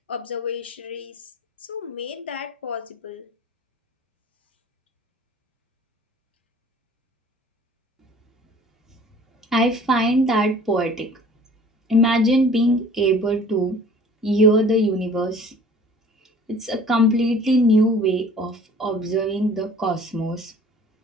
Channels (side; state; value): both; normal; correlation 0.49